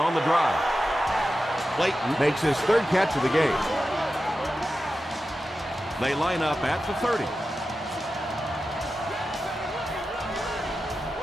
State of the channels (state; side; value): normal; both; correlation 0.92